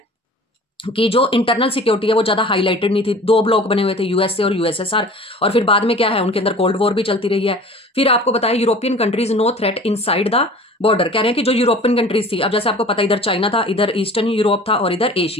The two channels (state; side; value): normal; both; correlation 0.43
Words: कि जो इंटरनल सिक्योरिटी है वो ज्यादा हाईलाइटेड नहीं थी। दो ब्लॉक बने हुए थे, यूएसए और यूएसएसआर, और फिर बाद में क्या है, उनके अंदर कोल्ड वॉर भी चलती रही है। फिर आपको बताया European countries no threat inside the border. कह रहे हैं कि जो यूरोपियन कंट्रीज थी, अब जैसे आपको पता इधर चाइना था, इधर ईस्टर्न यूरोप था और इधर